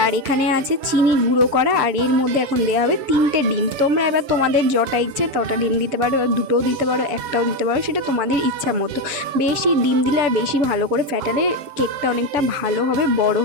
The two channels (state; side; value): late; left; 6.9 ms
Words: আর এখানে আছে চিনি গুঁড়ো করা, আর এর মধ্যে এখন দেওয়া হবে 3টে ডিম। তোমরা এবার তোমাদের যটা ইচ্ছে তটা ডিম দিতে পারো, দুটোও দিতে পারো, একটাও দিতে পারো, সেটা তোমাদের ইচ্ছা মতো। বেশি ডিম দিলে আর বেশি ভালো করে ফ্যাটালে কেকটা অনেকটা ভালো হবে, বড়